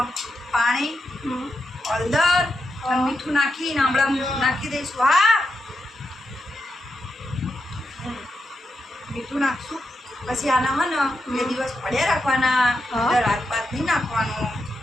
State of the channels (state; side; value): normal; both; correlation 0.86